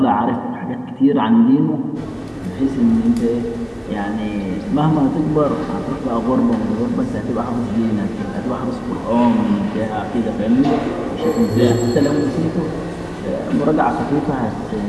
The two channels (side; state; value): both; identical; correlation 1.00